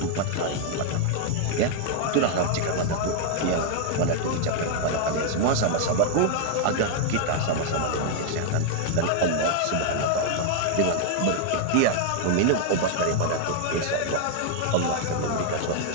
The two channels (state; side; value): different; both; correlation 0.00